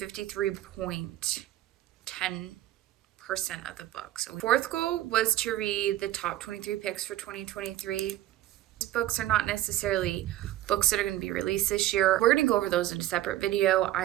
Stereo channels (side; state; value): left; quieter; 14.0 dB